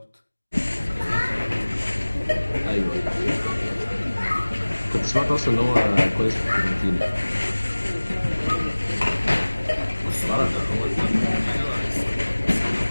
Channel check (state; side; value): inverted; both; correlation -1.00